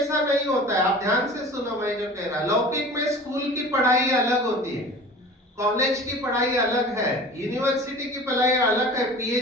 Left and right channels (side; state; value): both; normal; correlation 0.40